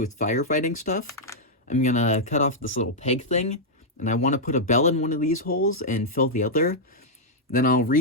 firefighting stuff. I'm gonna cut off this little peg thing, and I want to put a bell in one of these holes and fill the other. Then I'll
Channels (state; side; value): normal; both; correlation -0.06